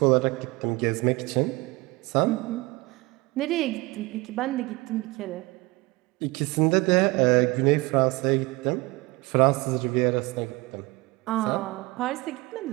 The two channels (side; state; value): left; quieter; 22.7 dB